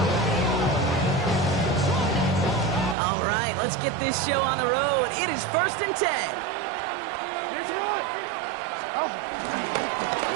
All right, let's get this show on the road. It is 1st and 10.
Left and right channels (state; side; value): drops out; left; at 3.0 s